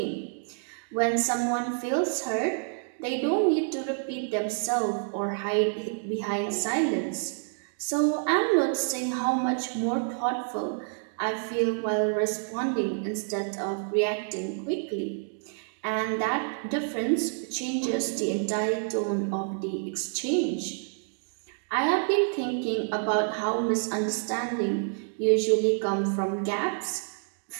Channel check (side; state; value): left; silent; 59 dB below the other